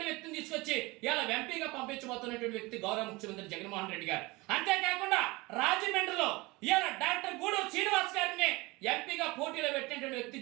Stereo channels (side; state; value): left; quieter; 23.1 dB